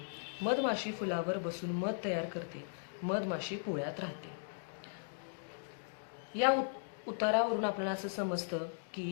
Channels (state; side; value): silent; right; digital silence